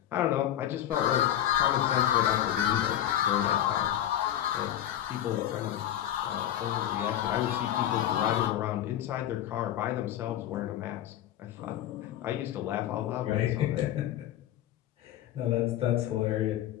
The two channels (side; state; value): right; quieter; 11.7 dB